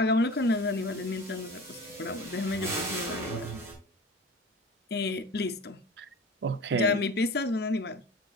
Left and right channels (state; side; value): normal; both; correlation 0.37